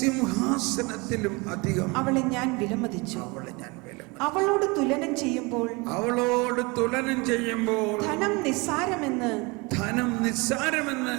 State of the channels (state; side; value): quieter; left; 26.7 dB